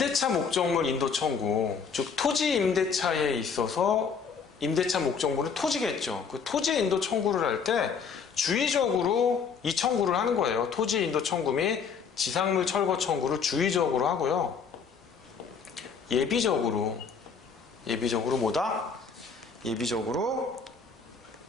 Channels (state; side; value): quieter; right; 6.0 dB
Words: 목적물 인도 청구, 즉 토지 임대차에 있어서 임대차 목적물은 토지겠죠. 그 토지 인도 청구를 할 때 주의적으로 이 청구를 하는 거예요. 토지 인도 청구 및 지상물 철거 청구를 주의적으로 하고요. 예비적으로 뭐다? 예비적으로